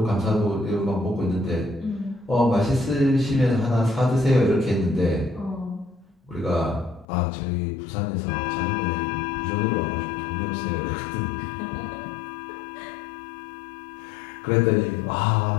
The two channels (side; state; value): right; drops out; at 7.1 s